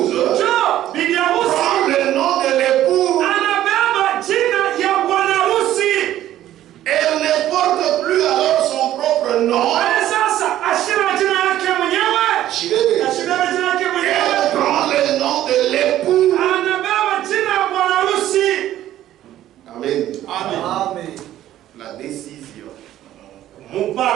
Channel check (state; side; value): quieter; left; 13.0 dB